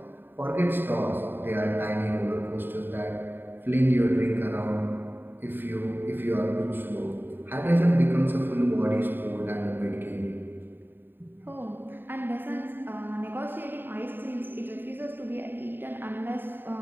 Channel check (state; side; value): late; left; 0.095 ms